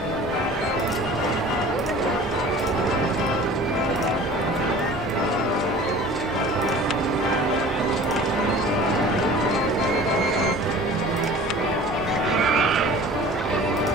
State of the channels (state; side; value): noise; left; rumble, 19 dB below the sound